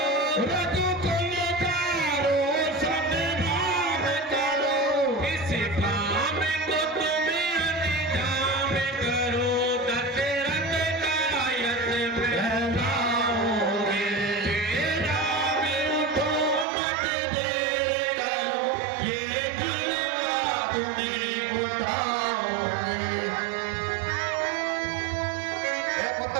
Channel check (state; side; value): drops out; left; at 16.7 s